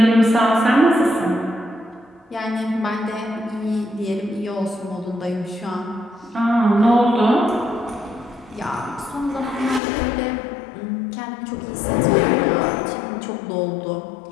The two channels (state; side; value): drops out; right; at 9.8 s